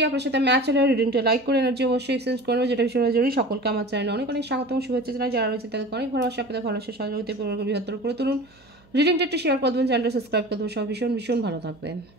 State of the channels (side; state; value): right; noise; hum, 30 dB below the sound